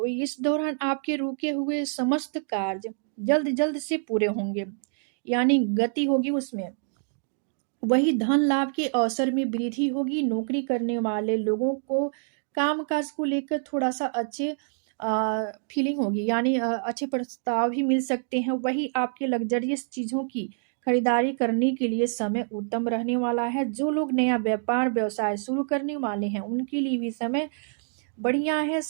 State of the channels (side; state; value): left; silent; 60 dB below the other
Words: इस दौरान आपके रुके हुए समस्त कार्य जल्द जल्द से पूरे होंगे, यानी गति होगी उसमें। वही धन लाभ के अवसर में वृद्धि होगी। नौकरी करने वाले लोगों को काम काज को लेकर थोड़ा सा अच्छे फीलिंग होगी, यानी अच्छे प्रस्ताव भी मिल सकते हैं। वही आपके लग्जरियस चीज़ों की खरीदारी करने के लिए समय उत्तम रहने वाला है। जो लोग नया व्यापार व्यवसाय शुरू करने वाले हैं उनके लिए भी समय बढ़िया है,